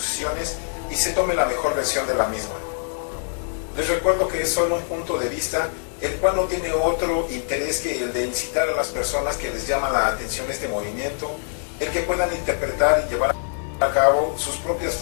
y se tome la mejor versión de la misma. Les recuerdo que es solo un punto de vista, el cual no tiene otro interés que el de incitar a las personas que les llama la atención este movimiento, el que puedan interpretar y llevar a cabo sus propias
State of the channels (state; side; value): silent; right; digital silence